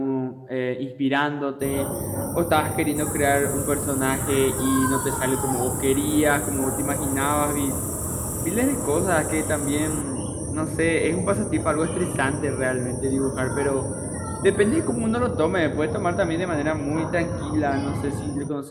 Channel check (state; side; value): identical; both; correlation 1.00